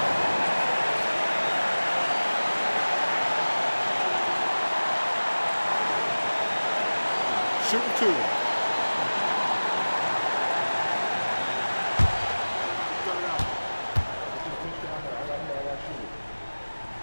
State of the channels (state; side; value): inverted; both; correlation -1.00